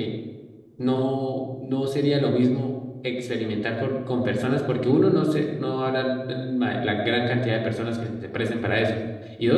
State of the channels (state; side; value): identical; both; correlation 1.00